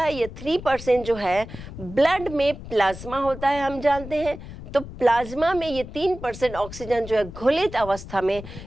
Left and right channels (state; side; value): noise; left; rumble, 13 dB below the sound